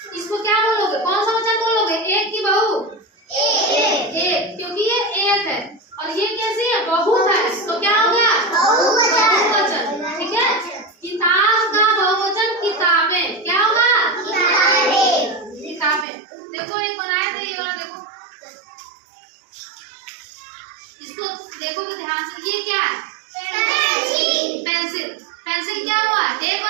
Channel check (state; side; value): drops out; left; at 16.1 s